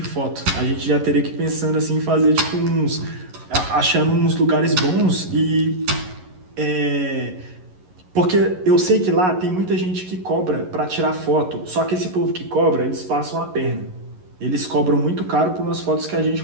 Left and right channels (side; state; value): left; late; 11 ms